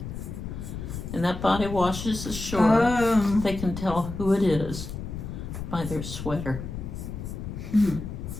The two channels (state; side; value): noise; left; rumble, 7 dB below the sound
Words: and that body washes ashore, they can tell who it is by their sweater. Hmm.